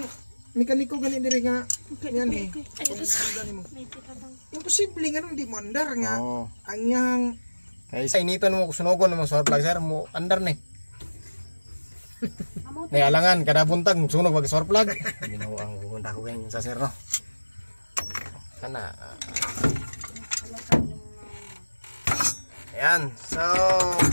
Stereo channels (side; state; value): both; inverted; correlation -1.00